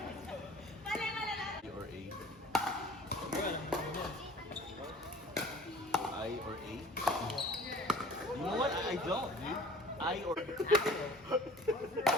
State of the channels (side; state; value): both; normal; correlation 0.48